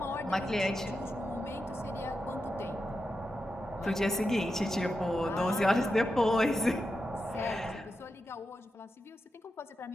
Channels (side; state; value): both; normal; correlation 0.89